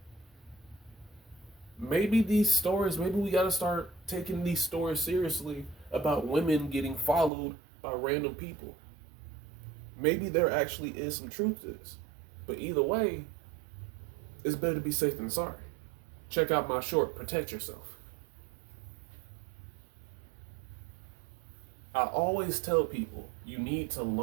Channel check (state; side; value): drops out; left; at 7.3 s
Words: Maybe we got to start taking these stories seriously about women getting followed by random people. Maybe there actually is some truth to this. But either way, it's better to be safe than sorry. Check out my short, Protect Yourself. I always tell people you need to